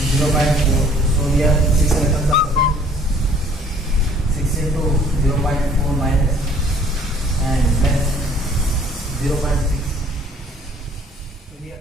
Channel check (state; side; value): normal; both; correlation 0.57